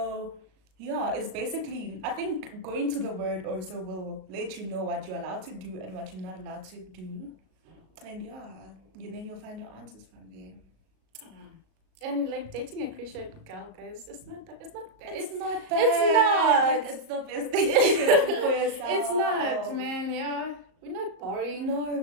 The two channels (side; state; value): left; late; 37 ms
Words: it's basically, I think going to the word also will let you know what you're allowed to do and what you're not allowed to do. And then you'll find your answers from there. And like dating a Christian girl, guys, it's not bad. It's not bad. It's not. It's the best thing you can do for yourself. It's not, man. Yeah, we're not boring. No,